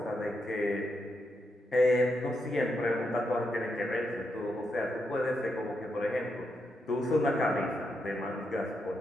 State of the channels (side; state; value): both; normal; correlation 0.82